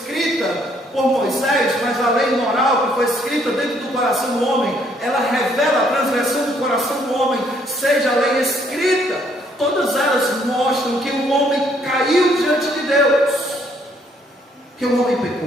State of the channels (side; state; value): both; normal; correlation 0.67